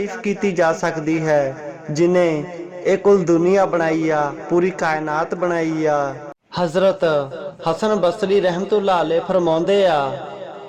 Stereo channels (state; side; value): identical; both; correlation 1.00